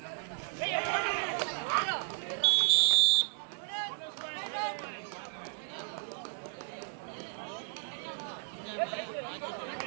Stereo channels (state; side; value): silent; left; digital silence